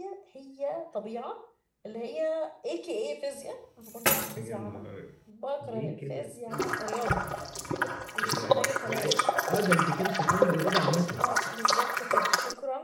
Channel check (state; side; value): identical; both; correlation 1.00